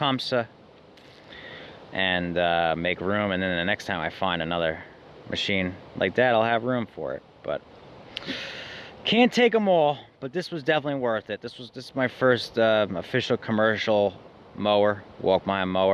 and make room, and then the next time I find another machine like that, I'll have room for it. But can't take them all, but this was definitely worth it. This is my first official commercial mower, walk behind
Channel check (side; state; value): both; identical; correlation 1.00